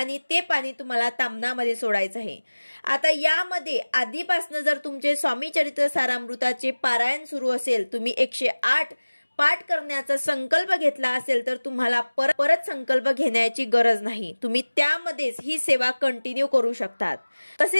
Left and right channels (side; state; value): both; inverted; correlation -1.00